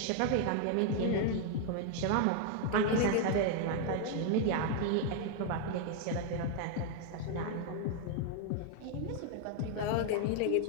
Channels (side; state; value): both; different; correlation 0.00